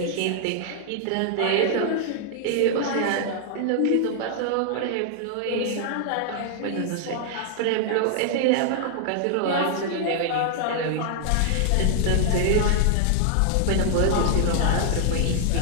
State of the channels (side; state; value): both; different; correlation -0.01